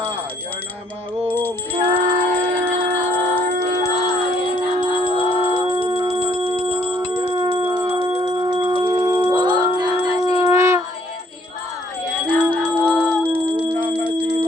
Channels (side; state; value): both; normal; correlation 0.63